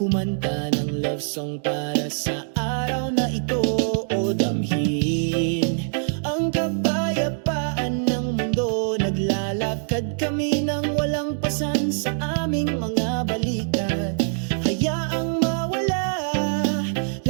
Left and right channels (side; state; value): left; silent; digital silence